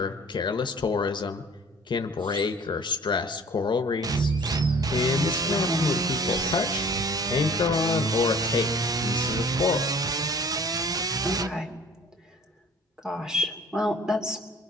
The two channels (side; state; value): both; normal; correlation 0.49